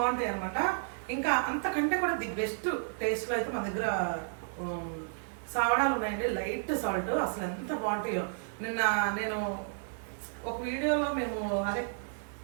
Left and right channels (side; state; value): left; silent; digital silence